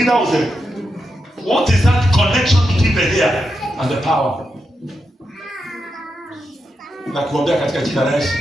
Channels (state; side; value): normal; both; correlation 0.86